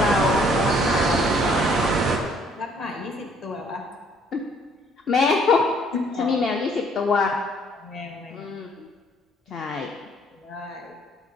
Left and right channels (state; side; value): normal; both; correlation 0.62